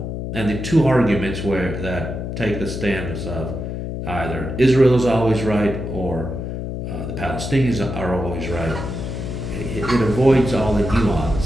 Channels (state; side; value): noise; left; hum, 5 dB below the sound